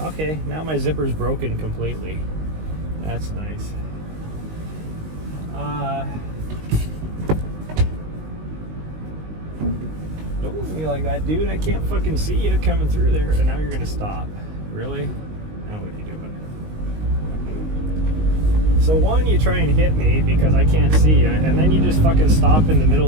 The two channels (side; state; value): left; late; 19 ms